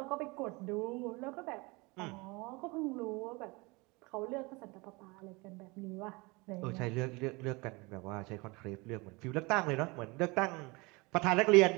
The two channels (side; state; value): left; quieter; 25.9 dB